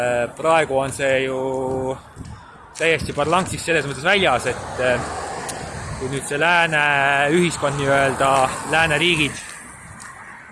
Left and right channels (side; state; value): both; identical; correlation 1.00